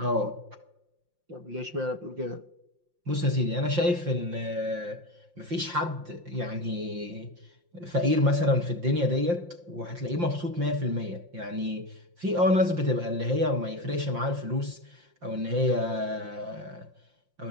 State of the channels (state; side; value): late; left; 5.7 ms